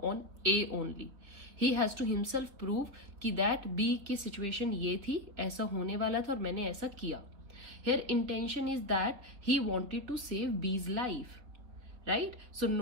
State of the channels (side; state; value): left; late; 4.0 ms